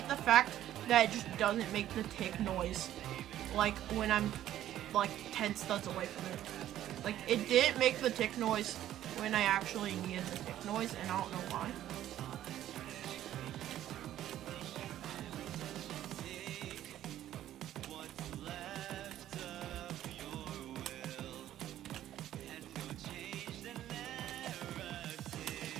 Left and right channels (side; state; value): left; quieter; 12.5 dB